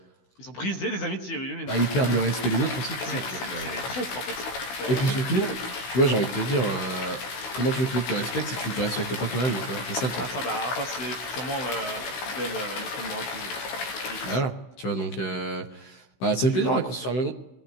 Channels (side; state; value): right; late; 16 ms